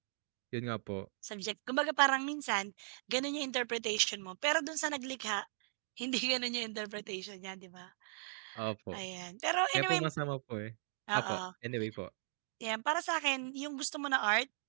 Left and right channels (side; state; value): left; silent; digital silence